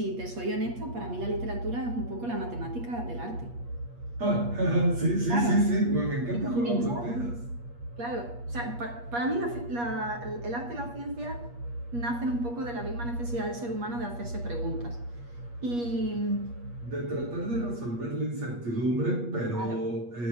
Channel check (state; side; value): late; left; 8.4 ms